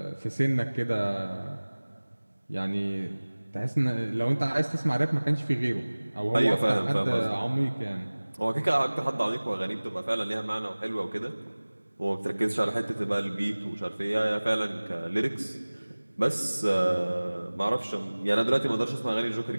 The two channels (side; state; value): both; inverted; correlation -1.00